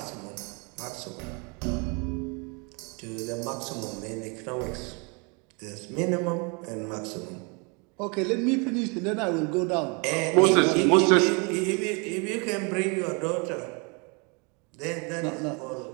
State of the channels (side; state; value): left; quieter; 32.5 dB